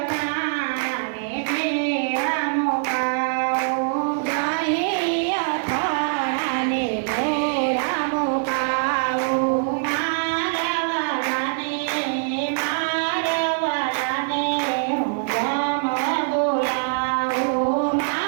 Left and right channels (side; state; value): left; silent; 63 dB below the other